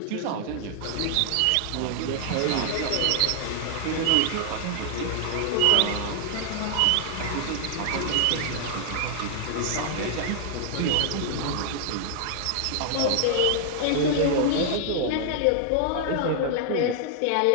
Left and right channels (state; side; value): different; both; correlation -0.01